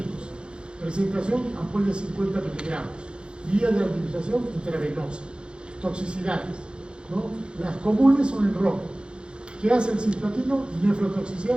Presentación ampolla de 50 miligramos. Vía de administración intravenosa. Toxicidades, ¿no? Las comunes son el rojo. ¿Qué hace el cisplatino?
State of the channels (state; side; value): late; left; 0.053 ms